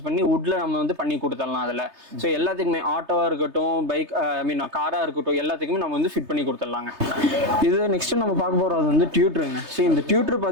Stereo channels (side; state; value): left; late; 3.3 ms